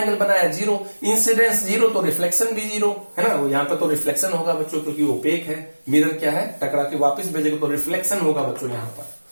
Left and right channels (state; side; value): inverted; both; correlation -1.00